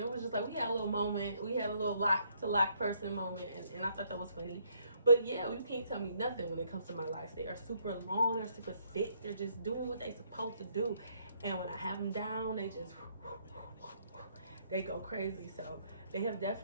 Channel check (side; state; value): both; inverted; correlation -0.69